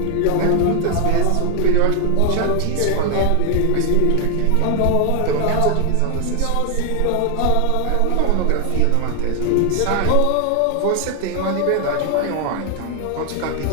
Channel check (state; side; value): different; both; correlation 0.01